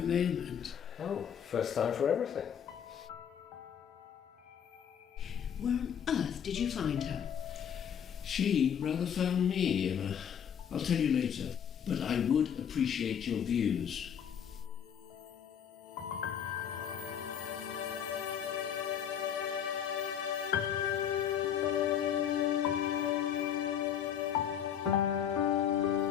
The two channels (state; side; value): quieter; right; 8.6 dB